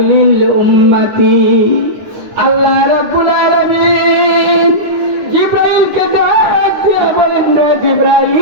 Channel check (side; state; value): left; late; 9.9 ms